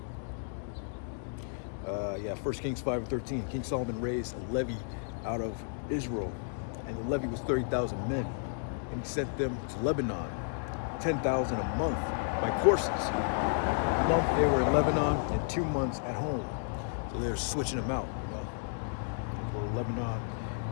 1 Kings 5:13. King Solomon raised a levy out of Israel, and the levy was 30,000 men, and he sent them to Lebanon, 10,000 a month by courses. A month they were in Lebanon, and 2 months at home. So they're switching them out, They go to Lebanon,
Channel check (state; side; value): silent; right; digital silence